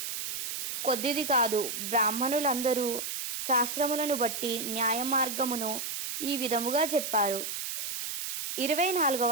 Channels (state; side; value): noise; right; hiss, 4 dB below the sound